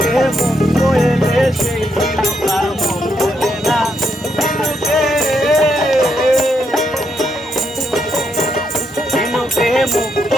মুক্ত এলে সেই ঝিনুকার মুখ বলে না। ঝিনুকে মুক্ত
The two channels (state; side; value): normal; both; correlation 0.78